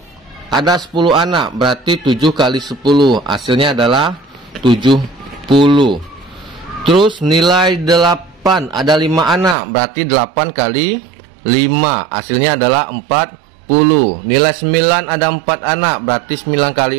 ada 10 anak. Berarti 7 kali 10, hasilnya adalah 70. Terus nilai 8, ada 5 anak, berarti 8 kali 5, hasilnya adalah 40. Nilai 9 ada 4 anak, berarti 9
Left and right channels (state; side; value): drops out; left; at 9.6 s